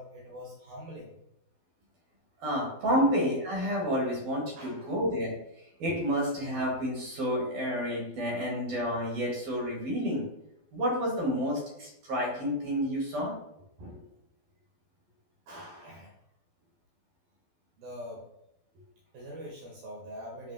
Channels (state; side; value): late; left; 12 ms